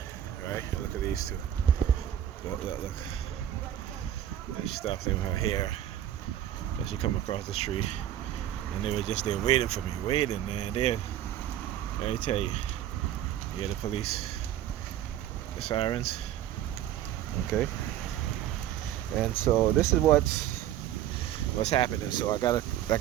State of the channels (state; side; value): quieter; left; 11.7 dB